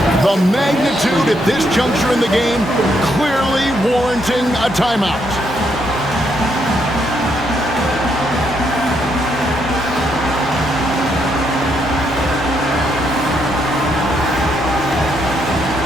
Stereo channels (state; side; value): normal; both; correlation 0.76